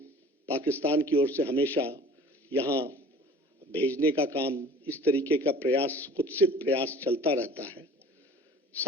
पाकिस्तान की ओर से हमेशा यहाँ भेजने का काम, इस तरीके का प्रयास, कुत्सित प्रयास चलता रहता है।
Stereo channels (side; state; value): both; normal; correlation 0.46